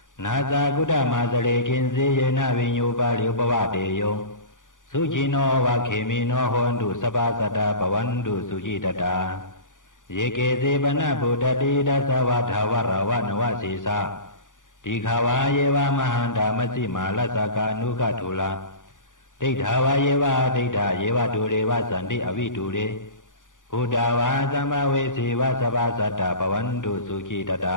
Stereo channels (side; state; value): right; late; 0.87 ms